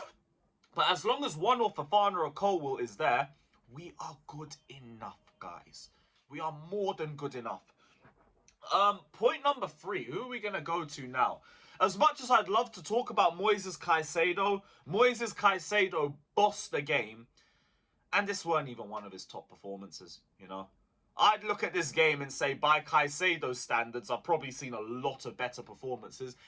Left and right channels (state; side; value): identical; both; correlation 1.00